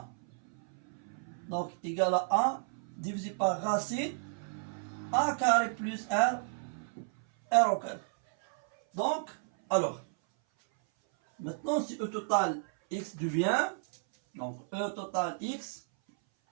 Donc, égal à A divisé par racine A carré plus R au carré. Donc, alors, maintenant, si E total X devient, donc E total X,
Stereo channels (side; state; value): left; silent; 56 dB below the other